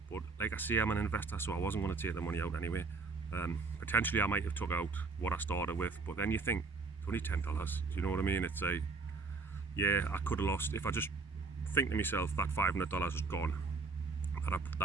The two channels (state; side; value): quieter; left; 4.2 dB